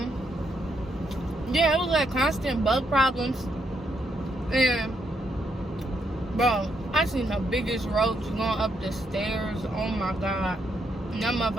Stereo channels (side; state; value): both; normal; correlation 0.77